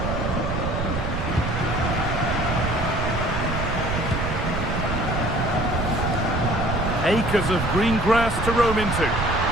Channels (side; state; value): right; noise; rumble, 3 dB below the sound